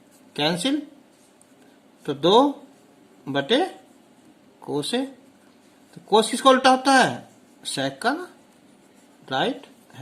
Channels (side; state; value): both; identical; correlation 1.00